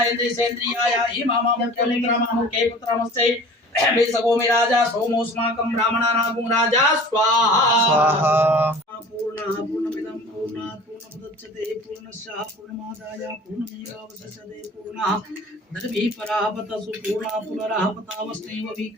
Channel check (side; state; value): both; normal; correlation 0.44